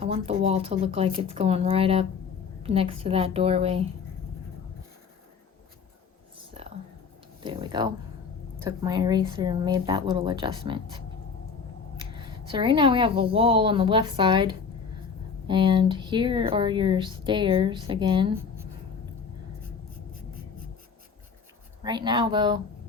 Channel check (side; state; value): right; quieter; 5.7 dB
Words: I want the wall to look like it's going right up next to that doorway. So there we go. Took my eraser and made that little adjustment. So right now we have a wall on the left side, and here are your stairs again. Right now though,